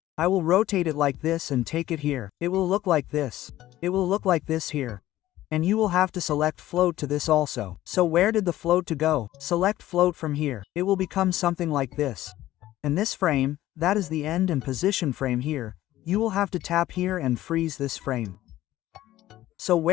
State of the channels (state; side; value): quieter; right; 14.8 dB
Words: I will rotate it like this and take it here. It will look like this. It will look like this here. And you will have to select float to this also. So where did the float to go? Select float from here. It will become something like this. And this frame, that is the end and position frame here. You will have to tap here and freeze this frame. So